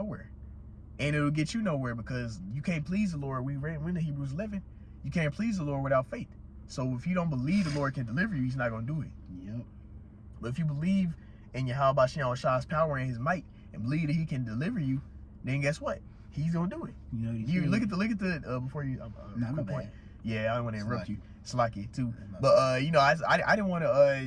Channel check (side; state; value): both; identical; correlation 1.00